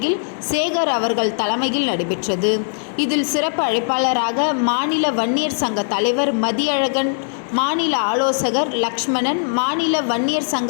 சேகர் அவர்கள் தலைமையில் நடைபெற்றது. இதில் சிறப்பு அழைப்பாளராக மாநில வன்னியர் சங்க தலைவர் மதியழகன், மாநில ஆலோசகர் லக்ஷ்மணன், மாநில வன்னியர்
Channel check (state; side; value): silent; right; 59 dB below the other